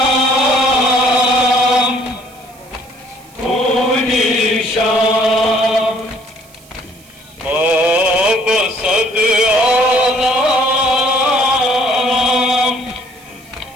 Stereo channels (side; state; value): right; noise; hiss, 26 dB below the sound